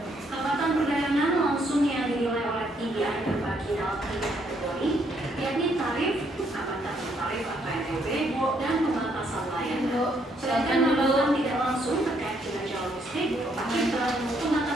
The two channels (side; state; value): both; normal; correlation 0.71